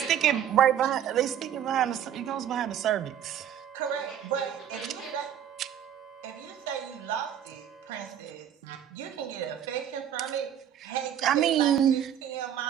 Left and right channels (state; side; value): quieter; left; 9.9 dB